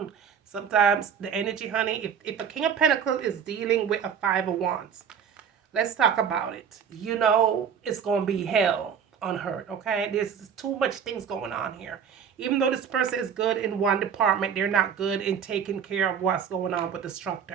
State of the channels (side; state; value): left; quieter; 7.5 dB